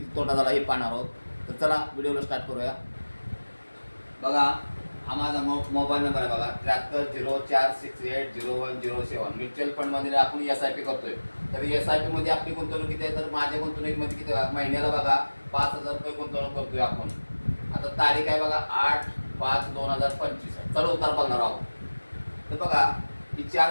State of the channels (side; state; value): both; inverted; correlation -1.00